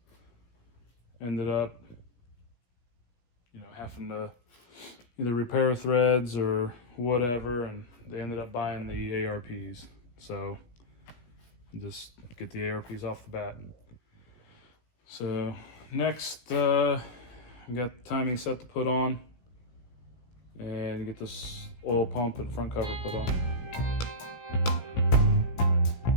ended up, having to either repair threads or whatever, and they ended up buying the ARPs. So just get the ARPs off the bat. So next, we got the timing set to put on and get this oil pump and front cover put on.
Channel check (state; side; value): late; right; 17 ms